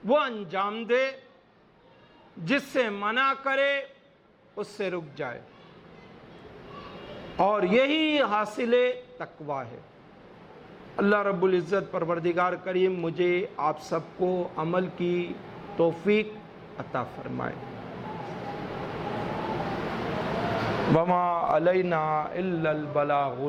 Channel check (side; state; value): both; identical; correlation 1.00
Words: وہ انجام دے، جس سے منع کرے اس سے رک جائے، اور یہی حاصل تقویٰ ہے۔ اللہ رب العزت پروردگار کریم مجھے آپ سب کو عمل کی توفیق عطا فرمائے۔ وما علینا الا البلاغ